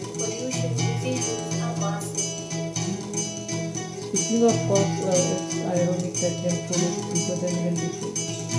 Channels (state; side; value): identical; both; correlation 1.00